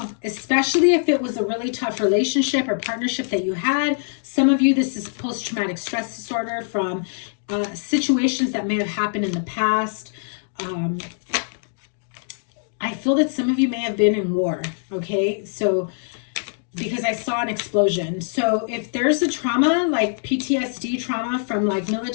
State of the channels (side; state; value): right; silent; digital silence